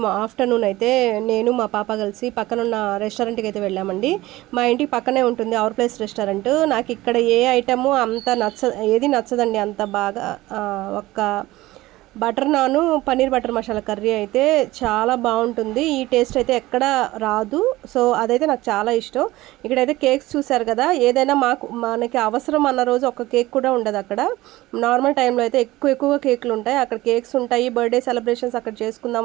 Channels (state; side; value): quieter; left; 18.0 dB